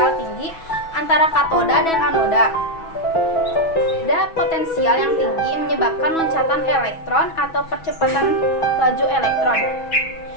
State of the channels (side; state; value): right; late; 6.1 ms